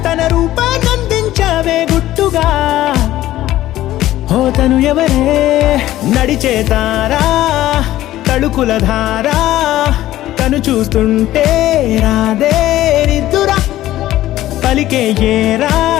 తన రూపాన్నందించావే గుట్టుగా ఓ తను ఎవరే నడిచే తారా తళుకుల ధారా తను చూస్తుంటే రాదే నిద్దురా పలికే ఏరా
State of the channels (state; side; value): quieter; right; 14.6 dB